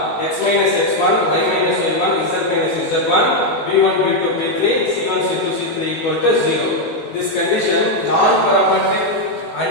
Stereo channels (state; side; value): late; right; 19 ms